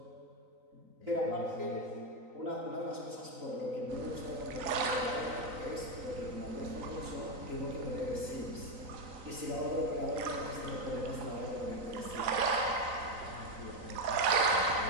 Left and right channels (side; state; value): left; late; 3.9 ms